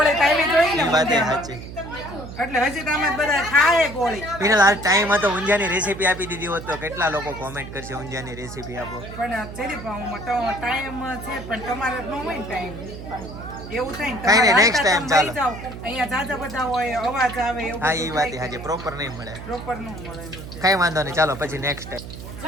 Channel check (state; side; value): noise; right; hum, 11 dB below the sound